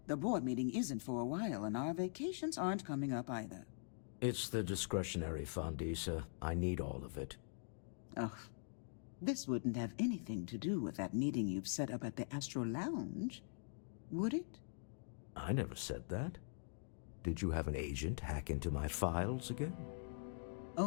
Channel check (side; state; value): right; silent; digital silence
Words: The board meeting isn't for a while, and our vacations aren't coming up either. It's the discretionary fund, Issa. I need all of it. Ugh. This wouldn't have anything to do with that meeting you've set up at the Astral Lounge, would it? I never said that. Did you have an agent hack into my files again?